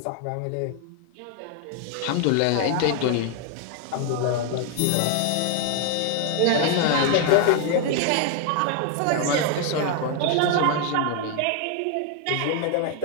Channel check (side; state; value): both; different; correlation 0.01